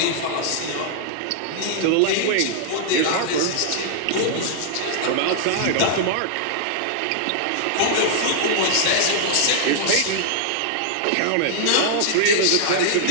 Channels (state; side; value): different; both; correlation -0.01